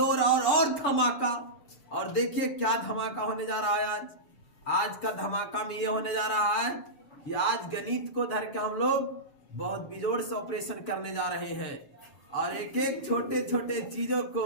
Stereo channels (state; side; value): late; right; 7.0 ms